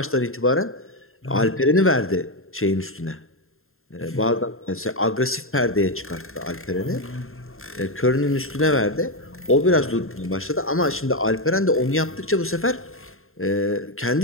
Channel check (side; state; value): right; late; 0.61 ms